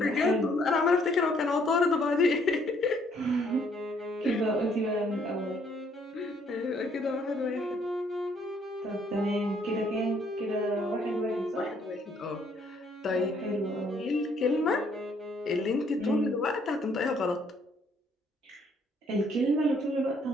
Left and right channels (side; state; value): both; normal; correlation 0.66